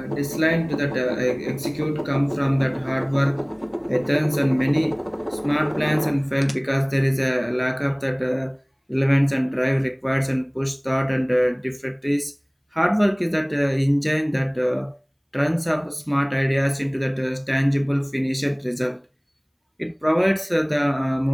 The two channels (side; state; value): both; identical; correlation 1.00